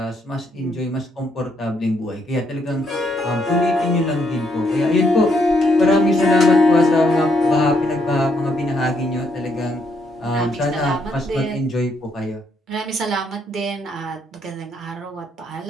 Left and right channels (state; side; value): normal; both; correlation 0.74